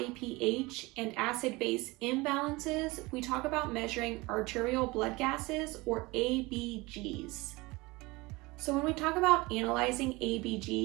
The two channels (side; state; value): left; quieter; 22.9 dB